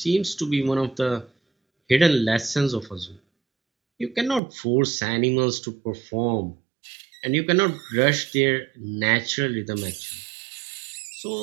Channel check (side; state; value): left; drops out; at 4.4 s